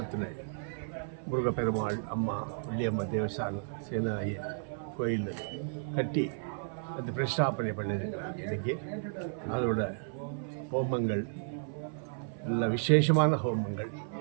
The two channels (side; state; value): left; silent; 56 dB below the other